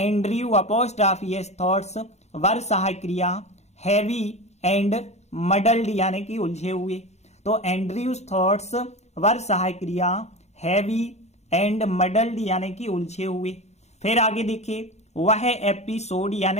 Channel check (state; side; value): late; right; 0.32 ms